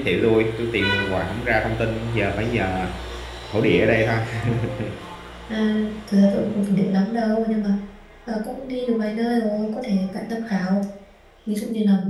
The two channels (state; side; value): identical; both; correlation 1.00